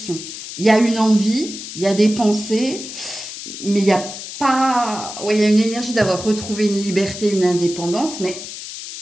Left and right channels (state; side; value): noise; left; hiss, 10 dB below the sound